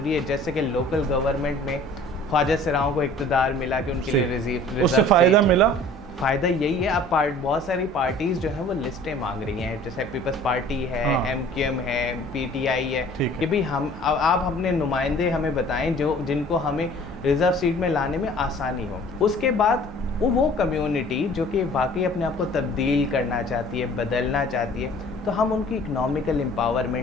है। जैसे कि लोकल गवर्नमेंट में ख्वाजा सराओं को इक़्तिदार मिला कि उनके लिए रिजर्व, उससे फ़ायदा मिला। फ़ायदा यही है, अब बहुत सारी पार्टीज़ जो हैं वो लिस्टें मांग रही हैं, जैसे पीपल्स पार्टी है, MQM है, PTI है, कि भाई आप अपने नुमाइंदे हमें बताएं जिनको हमें रिज़र्व सीट में लाने में आसानी हो। उसके बाद वो कम्युनिटी जो कि वाकई अपने आप को तब्दील करना चाहती है, बदलना चाहती है, तो हम उनकी इकनॉमिकल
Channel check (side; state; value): both; normal; correlation 0.50